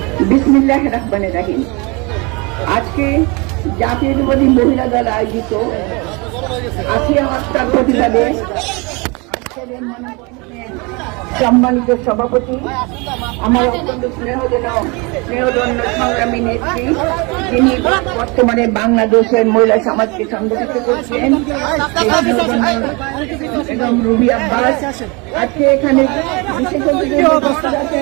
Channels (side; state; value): left; quieter; 28.4 dB